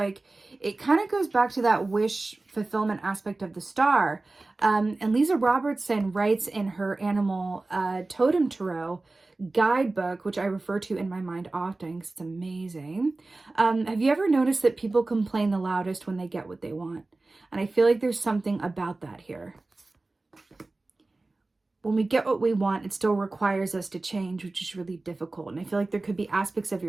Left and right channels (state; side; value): quieter; left; 3.2 dB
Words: it kind of goes back to that wish fulfillment aspect of the star. And Leeza Robertson writes in her animal totem tarot, guidebook, which I refer to in my mind often because it's amazing. Have you ever noticed that people complain the loudest when they get what they want? And I feel like there's something about that here. When we get what we want, it still requires us to change, which is really difficult. And I feel like there could be aspects of